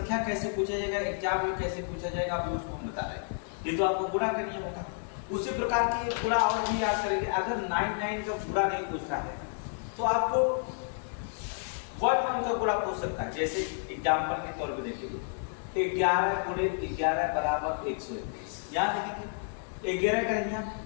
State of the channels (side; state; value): right; silent; 57 dB below the other